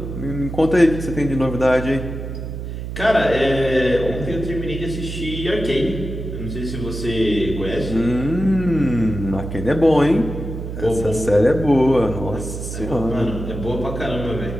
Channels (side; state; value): right; noise; hum, 7 dB below the sound